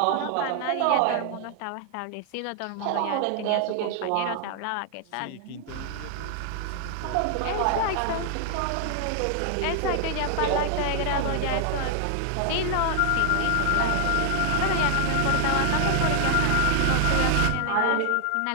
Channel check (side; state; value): both; different; correlation 0.00